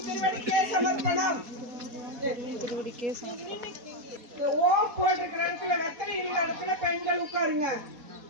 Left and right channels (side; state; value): left; late; 4.2 ms